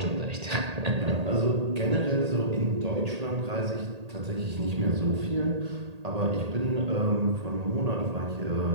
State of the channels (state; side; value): late; left; 1.8 ms